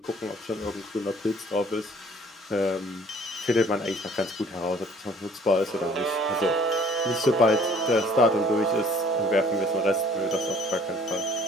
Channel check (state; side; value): normal; both; correlation 0.55